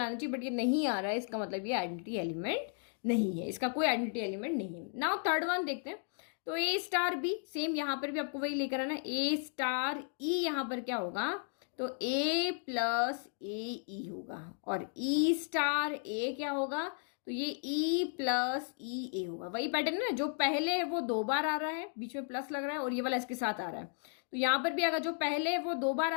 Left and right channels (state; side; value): silent; right; 55 dB below the other